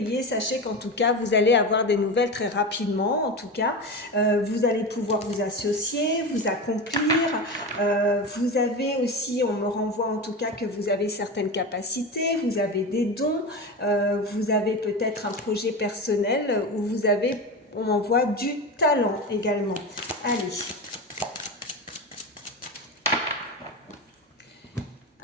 sachez qu'en tout cas, vous allez avoir des nouvelles très rapidement. En tout cas, vous allez pouvoir vous associer, vous accomplir. Vous avez aussi, on me renvoie en tout cas que vous avez certaines capacités, vous avez des dons, vous avez peut-être un projet personnel où vous avez, on m'envoie du talent également. Allez.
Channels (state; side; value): normal; both; correlation 0.23